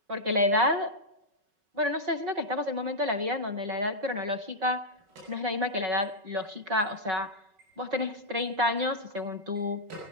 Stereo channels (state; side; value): late; left; 5.3 ms